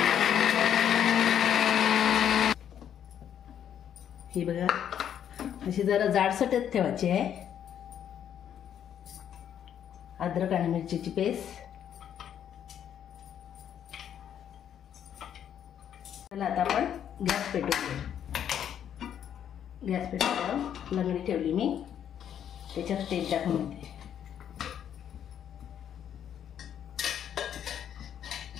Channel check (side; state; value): right; quieter; 9.5 dB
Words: ही बघा, अशी जरा जाडसरच ठेवायची आहे। अद्रक आणि मिरचीची पेस्ट। चला आता आपण गॅस पेटवून घेऊ। गॅस पेटवल्यावर लंगडी ठेवली मी, त्याच्यात तेल टाकून घेते।